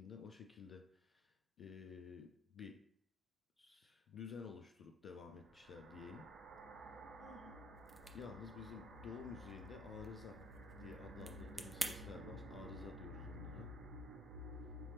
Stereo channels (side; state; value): both; normal; correlation 0.64